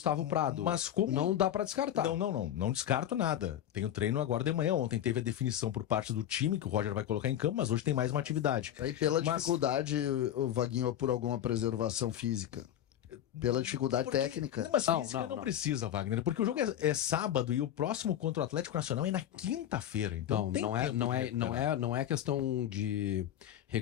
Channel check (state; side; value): quieter; right; 11.1 dB